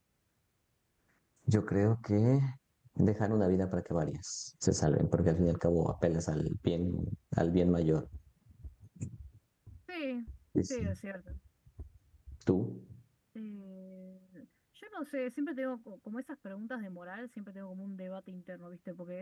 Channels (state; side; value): identical; both; correlation 1.00